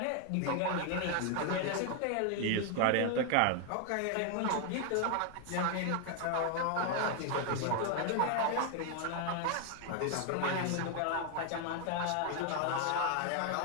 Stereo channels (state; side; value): different; both; correlation 0.00